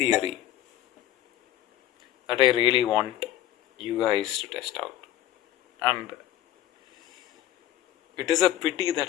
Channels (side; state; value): right; quieter; 12.7 dB